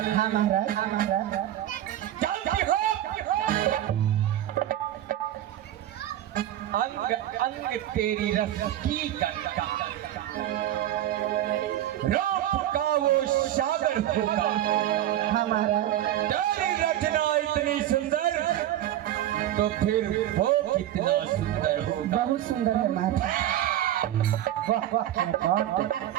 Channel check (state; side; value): quieter; left; 12.7 dB